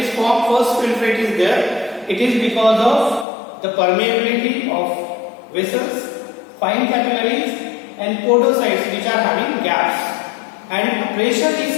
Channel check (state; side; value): drops out; right; at 3.2 s